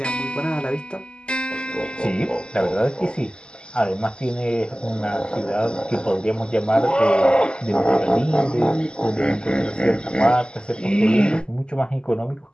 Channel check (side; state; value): right; late; 0.049 ms